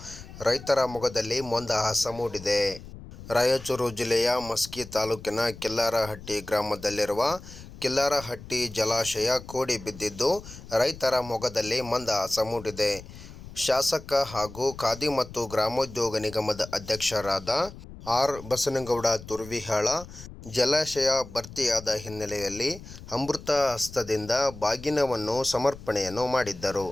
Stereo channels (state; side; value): noise; left; rumble, 16 dB below the sound